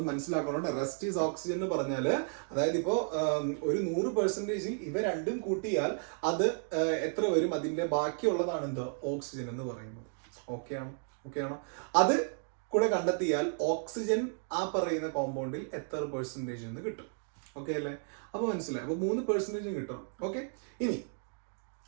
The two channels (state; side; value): silent; left; 56 dB below the other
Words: മനസ്സിലാക്കണം. റെസ്റ്റ് ഈസ് ഓക്സിജൻ എന്ന് പറഞ്ഞാൽ അതായത് ഇപ്പോ ഒരു 100%ൽ ഇവ രണ്ടും കൂട്ടിയാൽ അത് എത്ര വരും? അതിന്റെ ബാക്കിയുള്ളതാണ് എന്ത്? ഓക്സിജൻ എന്ന് പറയുന്നത്. ഓക്കെയാണോ? അത് കൂടെ കണ്ടെത്തിയാൽ ഓക്സിജൻ ആ പറയുന്ന കോമ്പൗണ്ടിൽ എത്ര പെർസെൻറ്റേജ് എന്ന് കിട്ടും. ഓക്കെ അല്ലേ? അപ്പൊ മനസ്സിലായി. അപ്പൊ 3% കിട്ടണം. ഓക്കെ, ഇനി